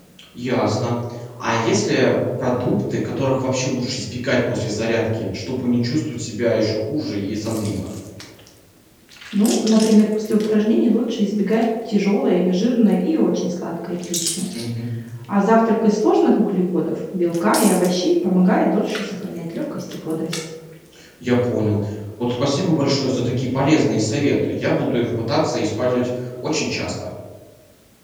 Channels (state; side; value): identical; both; correlation 1.00